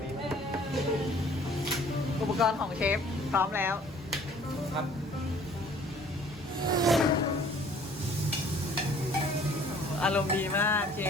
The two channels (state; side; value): normal; both; correlation 0.54